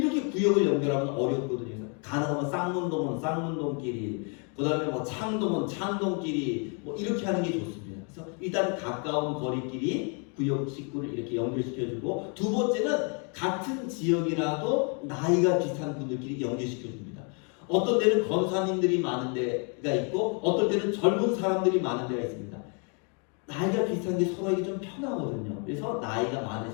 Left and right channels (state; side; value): quieter; right; 37.6 dB